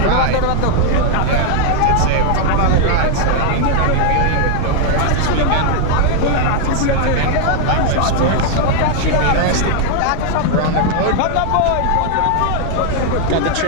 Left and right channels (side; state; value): both; different; correlation 0.00